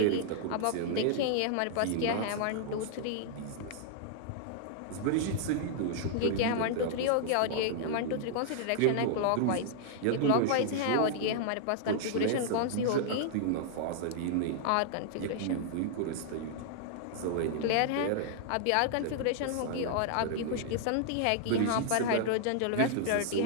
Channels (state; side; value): different; both; correlation -0.01